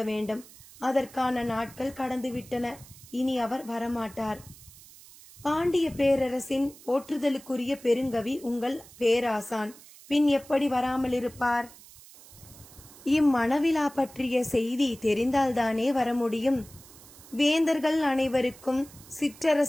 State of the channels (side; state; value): right; noise; hiss, 21 dB below the sound